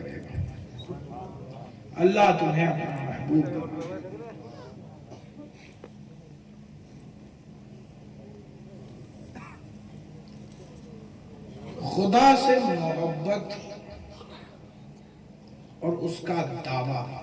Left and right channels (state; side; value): identical; both; correlation 1.00